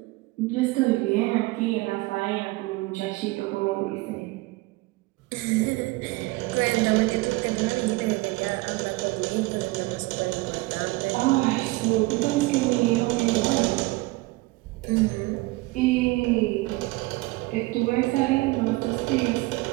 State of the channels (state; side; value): quieter; left; 21.8 dB